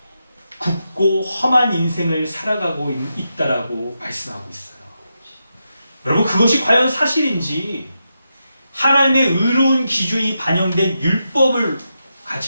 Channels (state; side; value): inverted; both; correlation -0.86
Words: 굽고 험한 인생을 살아가고 있다라고 말씀하고 있어요. 여러분, 그것이 과연 사실인지 하나님의 의로운 기준이 반영된 율법을